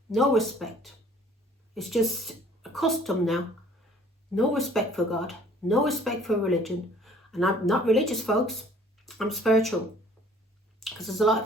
no respect. It's just a custom now. No respect for God, no respect for religion. And I'm not religious, folks. I'm spiritual. Because there's a lot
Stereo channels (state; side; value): normal; both; correlation 0.55